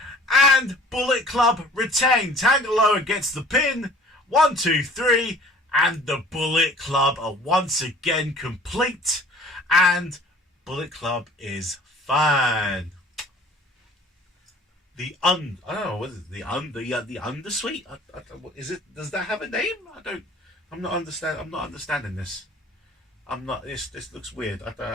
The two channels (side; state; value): both; normal; correlation 0.50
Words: And Bullet Club retain. Tanga Loa gets the pin. 1, 2, 3. And the Bullet Club are once again complete. And Bullet Club is fine. I don't know, what is it? The Undersuite? Is it? Does that have a name? I'm not understanding this. This looks weird.